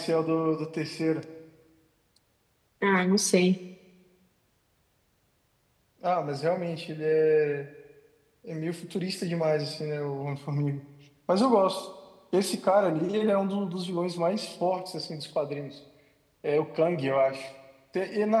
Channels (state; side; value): identical; both; correlation 1.00